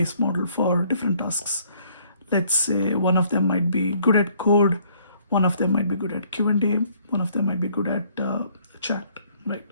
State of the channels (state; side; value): inverted; both; correlation -0.63